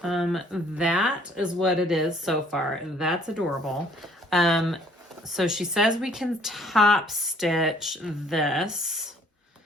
That is what it is so far. That's adorable. So she says we can top stitch this.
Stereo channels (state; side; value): normal; both; correlation 0.59